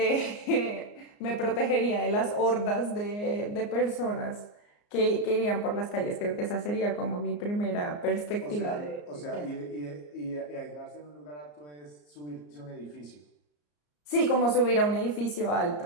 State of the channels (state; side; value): late; right; 34 ms